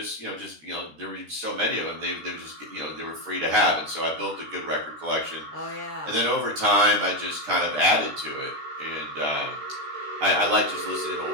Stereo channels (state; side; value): late; left; 13 ms